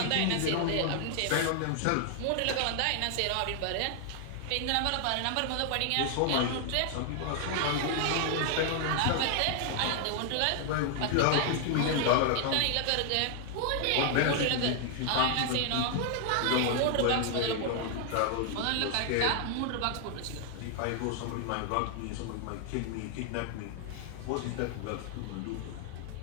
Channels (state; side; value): different; both; correlation 0.00